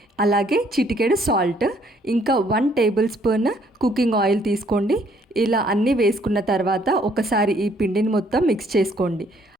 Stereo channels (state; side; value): normal; both; correlation 0.65